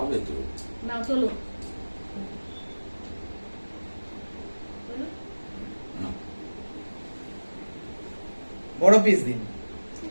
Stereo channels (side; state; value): both; inverted; correlation -1.00